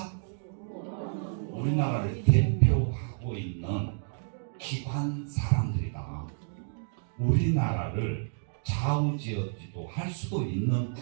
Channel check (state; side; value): silent; left; digital silence